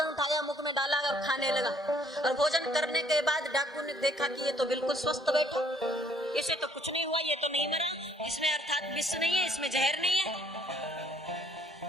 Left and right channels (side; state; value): both; normal; correlation 0.63